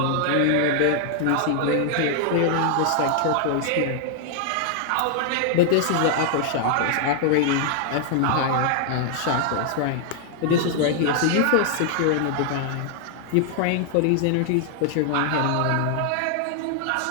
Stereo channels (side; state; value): both; different; correlation 0.00